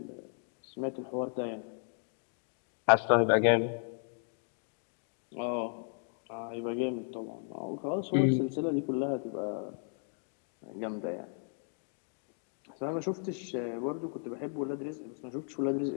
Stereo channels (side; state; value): right; silent; 55 dB below the other